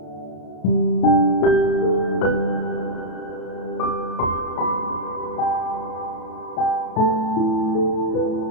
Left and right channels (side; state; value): right; late; 33 ms